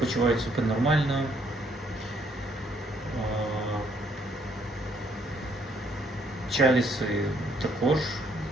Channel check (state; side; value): normal; both; correlation 0.68